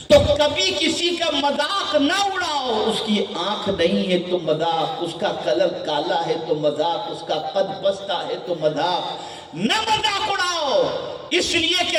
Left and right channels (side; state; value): both; identical; correlation 1.00